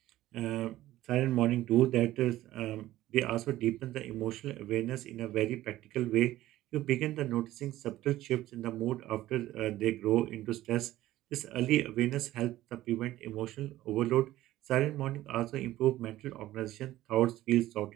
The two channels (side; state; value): left; quieter; 15.1 dB